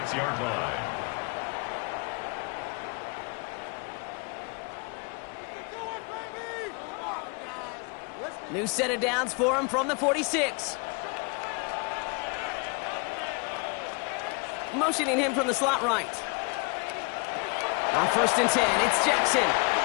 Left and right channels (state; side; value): quieter; right; 33.2 dB